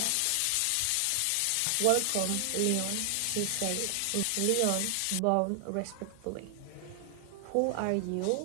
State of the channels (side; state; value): both; different; correlation 0.00